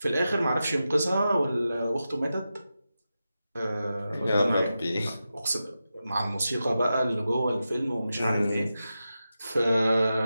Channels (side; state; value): both; inverted; correlation -0.91